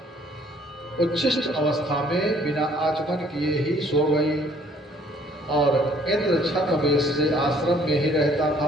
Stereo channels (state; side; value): normal; both; correlation 0.60